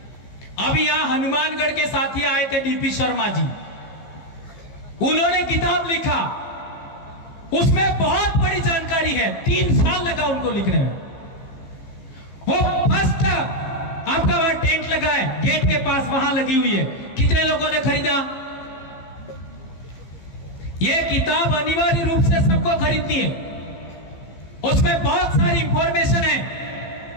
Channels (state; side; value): late; right; 15 ms